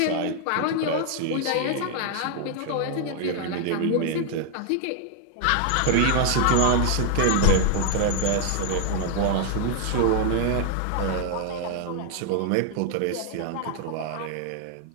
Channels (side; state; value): both; different; correlation 0.00